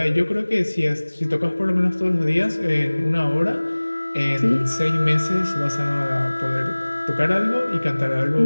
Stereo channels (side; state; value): both; inverted; correlation -1.00